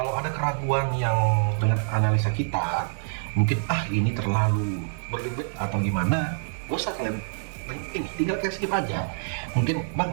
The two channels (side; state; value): left; silent; digital silence